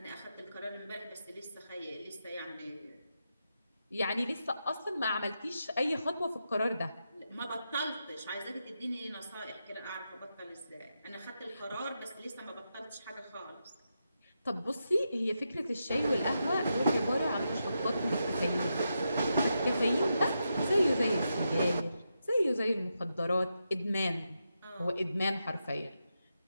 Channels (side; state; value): both; inverted; correlation -0.86